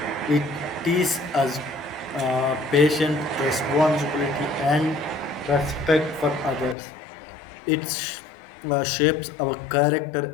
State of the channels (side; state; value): right; drops out; at 6.8 s